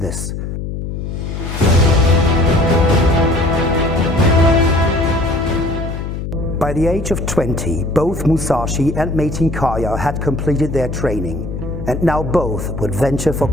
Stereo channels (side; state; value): left; noise; hum, 6 dB below the sound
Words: By the age of 20, both Musashi and Metin Kayar had completed their training, and now both would venture for